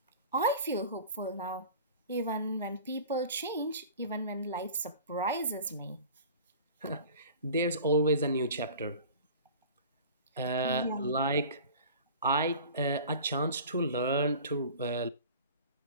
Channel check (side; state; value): both; inverted; correlation -0.41